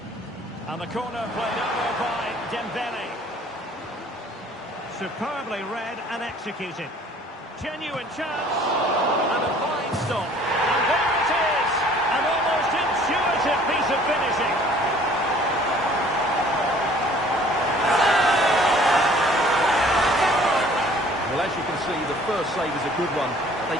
And the corner played over by Dembele. Superbly read and executed. Genuine chance. And a fine stop. And there it is. An almost intuitive piece of finishing. Well, as you can see, the first save is a good one.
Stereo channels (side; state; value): both; normal; correlation 0.54